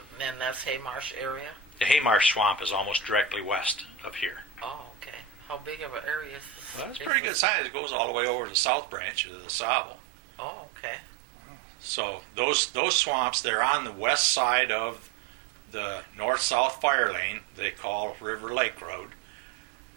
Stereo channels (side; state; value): left; drops out; at 7.1 s